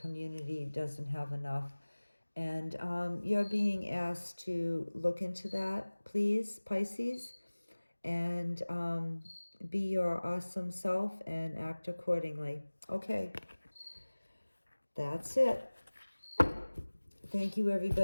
doesn't have enough. And you're being asked to look into that, please, Pisces, and be your awesome self and act accordingly. Okay, that's it. Thank you,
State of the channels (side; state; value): both; inverted; correlation -1.00